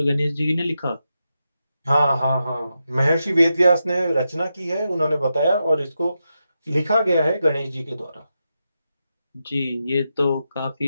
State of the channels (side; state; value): both; inverted; correlation -0.88